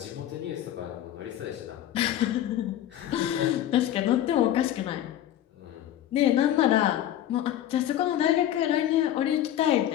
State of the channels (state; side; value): quieter; right; 12.0 dB